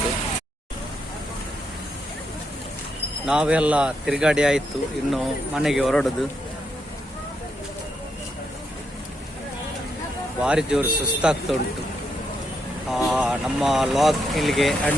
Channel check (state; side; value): normal; both; correlation 0.79